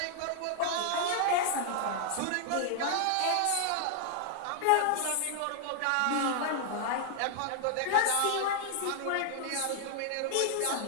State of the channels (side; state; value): both; different; correlation 0.00